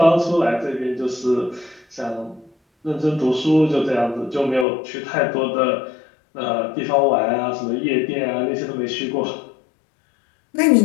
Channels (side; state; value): right; drops out; at 4.7 s